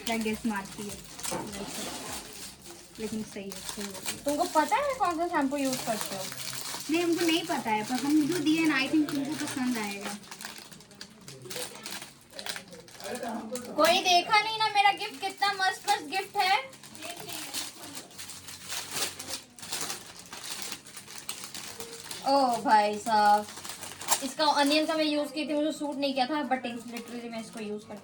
क्या गेस मारती है। लेकिन सही है, सही है। तुमको पता है कौन सा शैम्पू यूज करते हो? नहीं हमको नहीं पता है, पर हम जो दिए ना आई थिंक तुमको पसंद आएगा। कोई देखा नहीं ना मेरा गिफ्ट कितना मस्त मस्त गिफ्ट है। ओ भाई साहब, इसका अनियन का मैं यूज की थी, मुझे सूट नहीं किया था, बट लिटरली मैं इसको यूज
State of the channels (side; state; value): both; identical; correlation 1.00